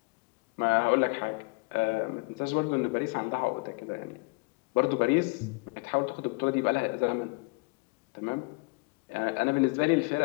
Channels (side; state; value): right; quieter; 29.4 dB